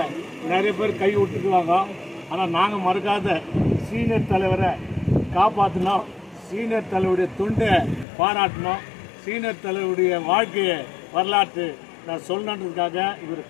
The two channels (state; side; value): drops out; right; at 8.1 s